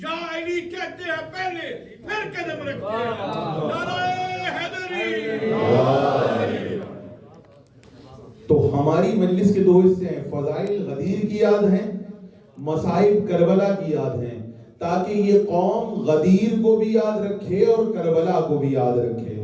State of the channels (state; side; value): identical; both; correlation 1.00